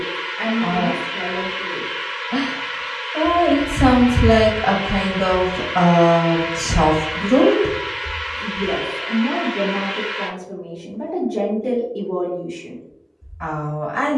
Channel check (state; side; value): identical; both; correlation 1.00